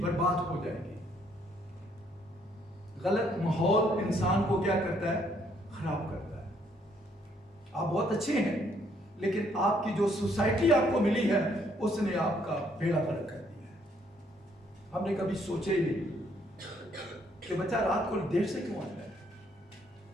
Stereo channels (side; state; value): both; normal; correlation 0.68